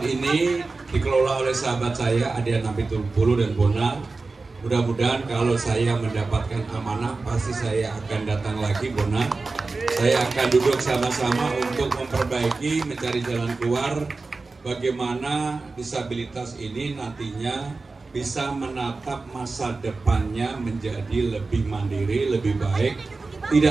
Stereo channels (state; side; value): quieter; left; 3.8 dB